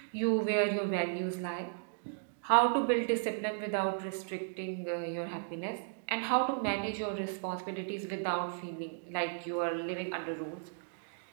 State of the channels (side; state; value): left; silent; digital silence